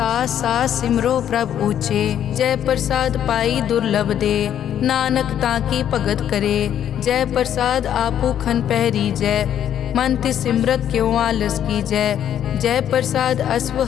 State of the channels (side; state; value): right; quieter; 10.1 dB